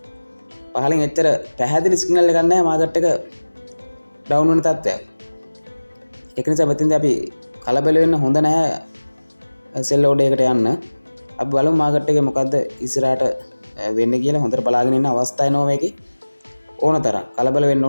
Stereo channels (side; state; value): both; inverted; correlation -1.00